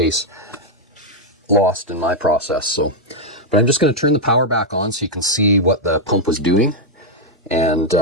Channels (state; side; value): normal; both; correlation -0.01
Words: lost in my process. So, but I'm just going to turn the power back on so you can see what the pump was doing. And